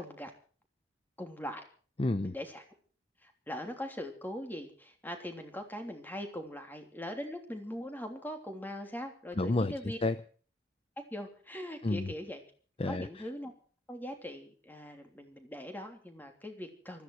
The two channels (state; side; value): normal; both; correlation 0.75